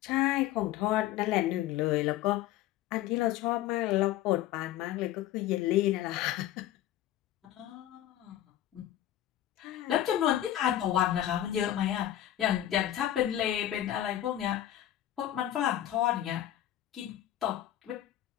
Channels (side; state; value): right; quieter; 12.7 dB